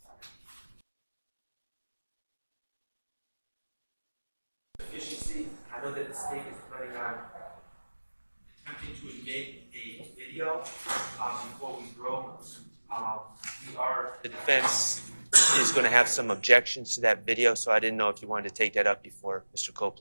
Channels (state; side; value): inverted; both; correlation -1.00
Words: Efficiency, I know that the state is planning on attempting to make a video before we grow. The defense is going to have some objections to that video, so I didn't know if you wanted to take that up before Mr.